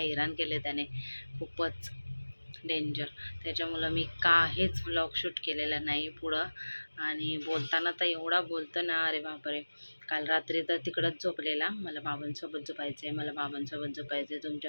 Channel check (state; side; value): inverted; both; correlation -1.00